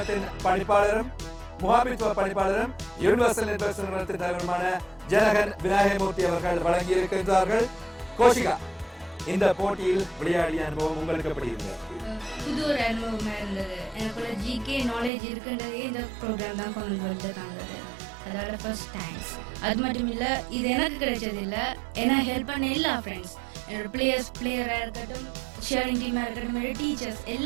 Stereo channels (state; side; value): drops out; left; at 15.1 s